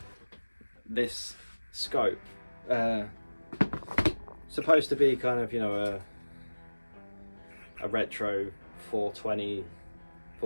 this scope. Supposed to be kind of, you know, a retro 420,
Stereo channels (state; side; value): inverted; both; correlation -1.00